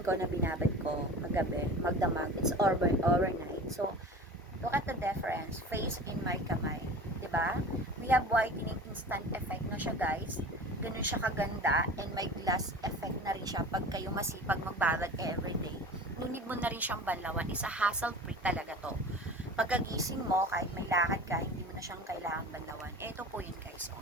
na binabad ko magabi, magdamag. It's overnight. So, look at the difference. Face in my kamay. 'Di ba? We have whitening instant effect na siya, guys. Ganun siya kaganda. And may glass effect na rin siya pag kayo masipag magbabad everyday. Nunid mo na rin siyang banlawan. Isa hassle-free talaga to. Pagkagising mo, kahit may lakad ka, hindi mo na siyang kailangang banlawan. Ito po yun, guys. So,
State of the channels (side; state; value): both; normal; correlation 0.37